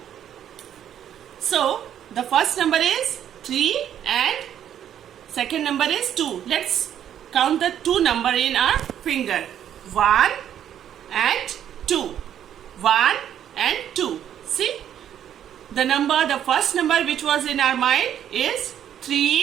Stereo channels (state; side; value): quieter; left; 10.1 dB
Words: So, the first number is 3 and second number is 2. Let's count the 2 number in our finger. 1 and 2. 1 and 2. See? The first number which was in our mind is